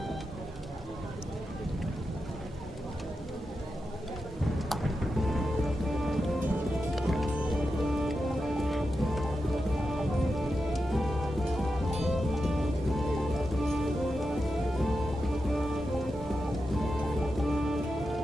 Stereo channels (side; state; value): both; normal; correlation 0.89